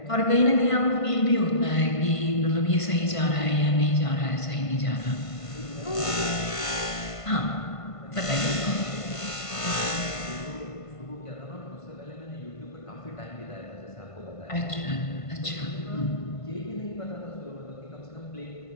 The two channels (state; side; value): late; right; 1.5 ms